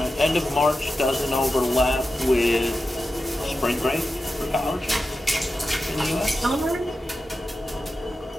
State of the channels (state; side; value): normal; both; correlation 0.91